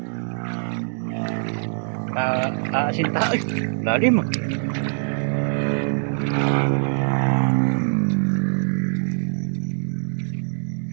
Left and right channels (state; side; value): silent; left; digital silence